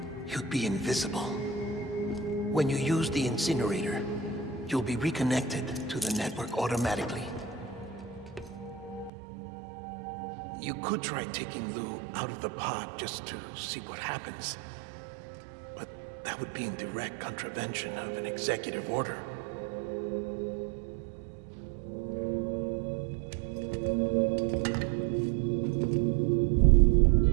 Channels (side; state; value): left; drops out; at 9.1 s